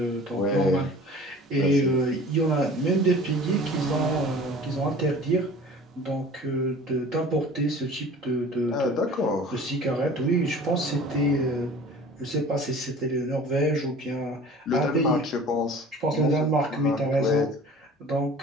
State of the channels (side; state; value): both; normal; correlation 0.44